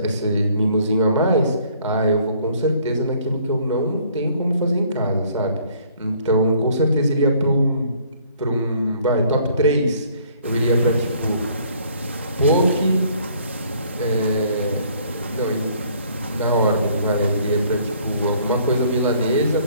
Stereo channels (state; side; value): inverted; both; correlation -0.60